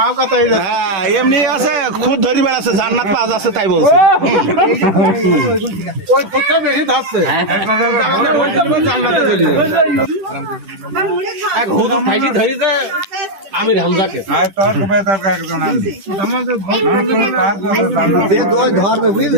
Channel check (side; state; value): left; late; 10 ms